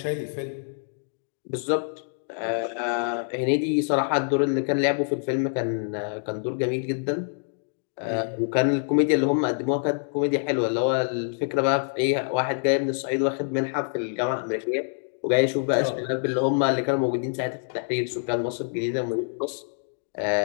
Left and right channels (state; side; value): silent; right; digital silence